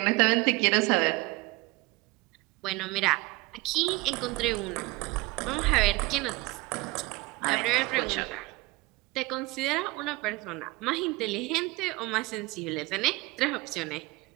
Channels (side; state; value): left; quieter; 22.6 dB